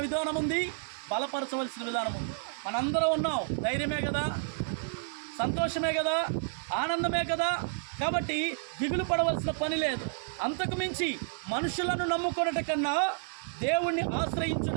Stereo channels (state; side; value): silent; left; digital silence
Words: విధానం ఉంది, బలపరచవలసిన విధానం ఉంది. మనందరం ఉన్నాం, ధైర్యమే కదా, సంతోషమే కదా, ఆనందమే కదా. కాబట్టి దిగులు పడవలసిన పని లేదు. అంతకు మించి మనుషులను నమ్ముకున్నట కన్నా దేవుణ్ణి